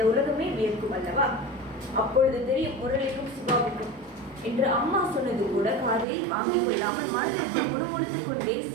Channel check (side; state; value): left; drops out; at 6.1 s